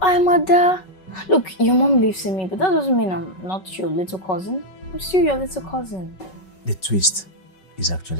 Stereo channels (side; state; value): right; late; 5.3 ms